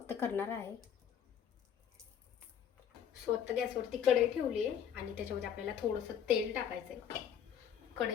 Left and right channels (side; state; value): right; quieter; 8.6 dB